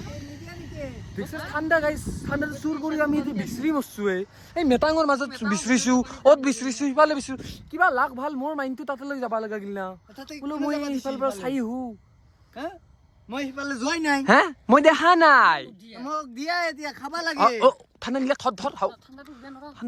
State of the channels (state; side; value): identical; both; correlation 1.00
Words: দেখছ ঠাণ্ডা গাইছ ঠাণ্ডা চুৰ কৰি আমি এতিয়া বিচাৰি মৰছো এই মেটাঙৰ মাজত বিচাৰিছো অত বিচাৰিছো সিফালে বিচাৰিছো কিবা লাগ ভাল মোৰ মাইণ্ডটো তাতে লৈ যাব লগা গিল না তাতে বোলো কোনে মই যাবা দিছিল সিফালৰ পৰা চাই আহো হা মই সিফালে যোৱাই নাই হা মই দেখা নাই মোক দিয়া এতিয়া খাবা লাগে ঠাণ্ডা নিলে ধৰ